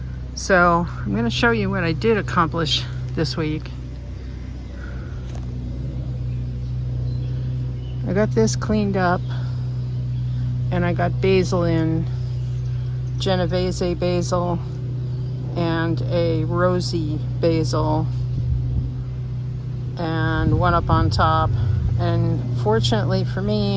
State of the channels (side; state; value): both; identical; correlation 1.00